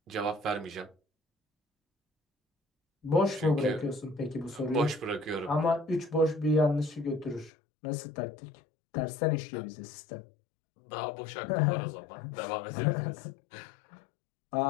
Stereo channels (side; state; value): right; drops out; at 7.5 s